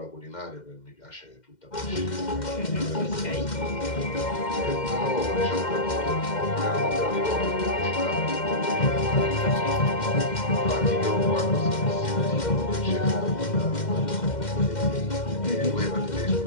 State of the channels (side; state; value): right; late; 2.1 ms